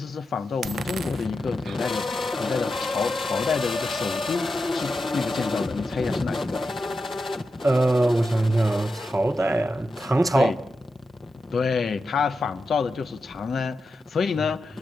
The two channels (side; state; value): both; normal; correlation 0.89